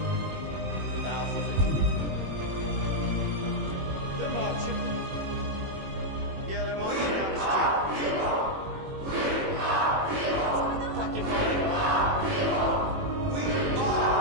thousands. They're marching. Yeah, they're marching down the street. Fucking fine. We are.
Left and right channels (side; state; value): left; late; 21 ms